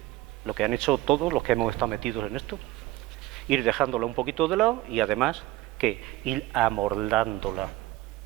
lo que han hecho todos los que hemos estado metidos en esto. Ir dejándola un poquito de lado y además, ¿qué? Ir amordándola,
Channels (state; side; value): quieter; left; 17.4 dB